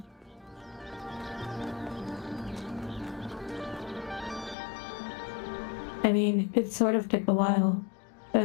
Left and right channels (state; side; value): drops out; right; at 4.5 s